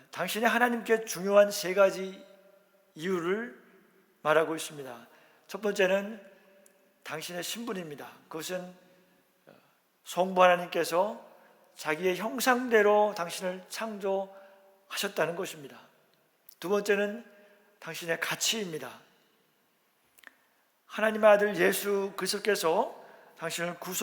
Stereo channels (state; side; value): identical; both; correlation 1.00